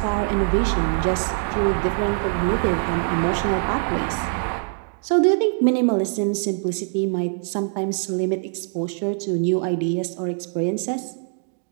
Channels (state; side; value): silent; left; digital silence